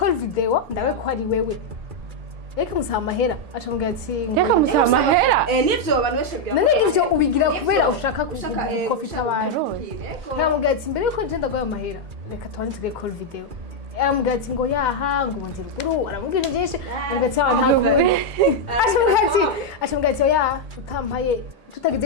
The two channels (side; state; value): left; late; 2.3 ms